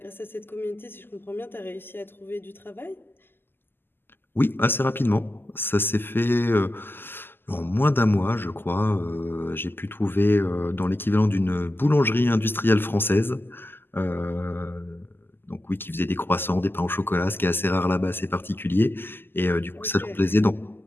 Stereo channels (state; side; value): late; right; 0.10 ms